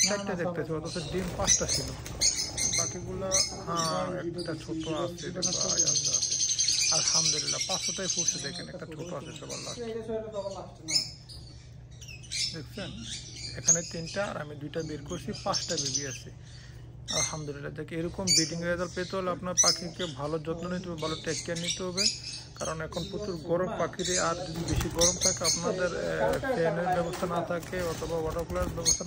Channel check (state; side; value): identical; both; correlation 1.00